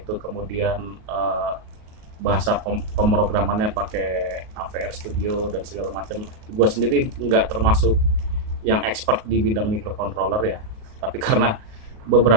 kemudian bahasa pemrogramannya pakai AVR Studio dan segala macam. Gua sendiri nggak termasuk yang expert di bidang microcontroller ya, tapi karena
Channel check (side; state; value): left; late; 38 ms